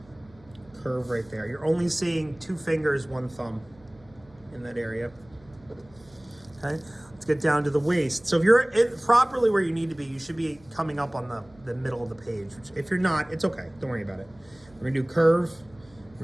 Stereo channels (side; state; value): right; noise; hum, 27 dB below the sound